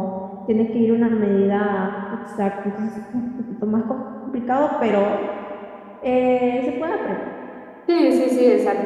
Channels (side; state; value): both; identical; correlation 1.00